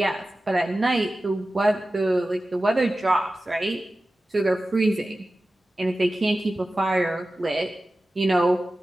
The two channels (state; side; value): normal; both; correlation 0.95